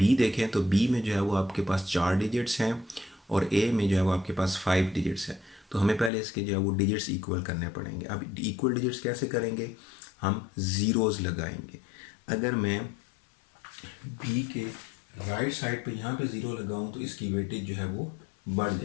देखें तो बी में जो है वो आपके पास 4 डिजिट्स हैं और ए में जो है वो आपके पास 5 डिजिट्स हैं। तो हमें पहले इसके जो है वो डिजिट्स इक्वल करने पड़ेंगे। अब इक्वल डिजिट्स कैसे करेंगे, हम ज़ीरोज़ लगाएंगे। अगर मैं बी के राइट साइड पे यहाँ पे ज़ीरो लगाऊँ तो इसकी वेटेज जो है वो बढ़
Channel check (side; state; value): right; drops out; at 6.1 s